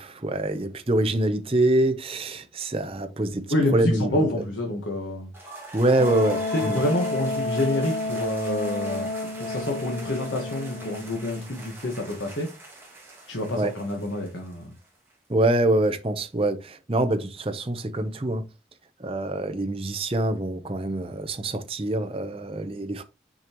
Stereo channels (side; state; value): both; normal; correlation 0.53